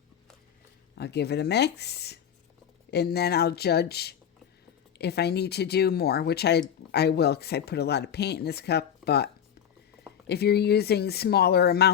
I'll give it a mix, and then I'll judge if I need to do more, which I will, because I put a lot of paint in this cup. But if you're using smaller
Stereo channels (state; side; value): quieter; right; 8.8 dB